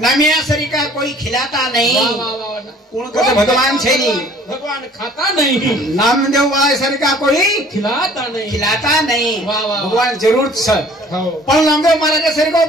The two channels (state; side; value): normal; both; correlation 0.53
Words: नमिया सरी का कोई खिलाता नहीं, कौन कहता भगवान छे नहीं, भगवान खाता नहीं, नामदेव वाले सरी का कोई खिलाता नहीं, खिलाता नहीं, भगवान जरूर छ पण नामदेव महाराज सरी को